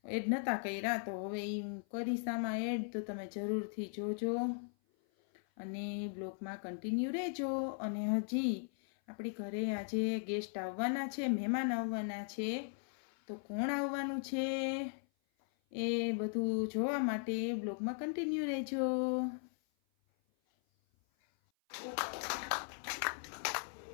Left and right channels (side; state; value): right; silent; 52 dB below the other